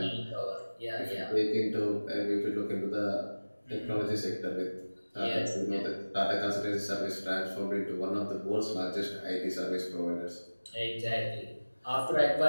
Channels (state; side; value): inverted; both; correlation -1.00